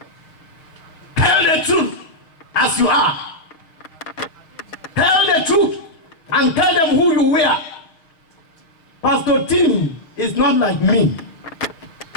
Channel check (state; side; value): late; right; 6.3 ms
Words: Tell the truth as you are. Tell the truth and tell them who you were. Pastor Tim is not like me.